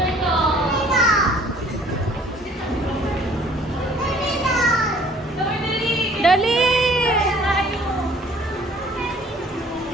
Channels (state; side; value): normal; both; correlation 0.55